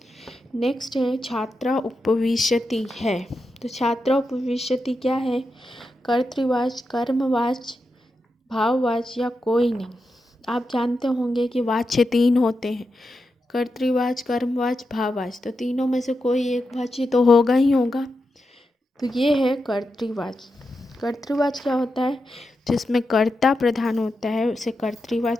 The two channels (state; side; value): normal; both; correlation 0.88